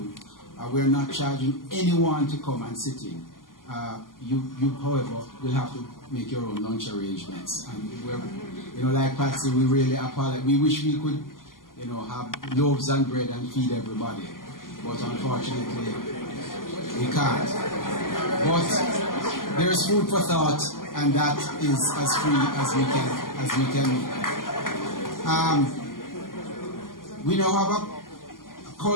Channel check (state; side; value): late; right; 0.91 ms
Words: We're not charging anyone to come and sit in. You, however, will have to make your own lunch arrangements. And like Patsy, we really apologize. We wish we could, have loaves and bread and feed everybody, but unfortunately, we can't. But there's food for thought, and that is as free as we can. We now have a